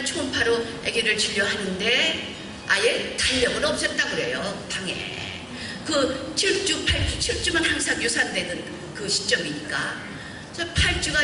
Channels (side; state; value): both; identical; correlation 1.00